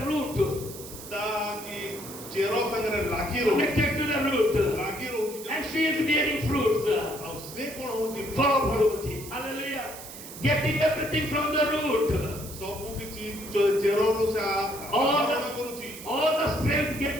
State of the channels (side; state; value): right; noise; hiss, 13 dB below the sound